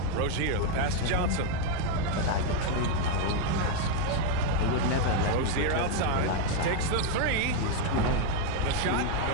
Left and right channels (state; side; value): different; both; correlation 0.01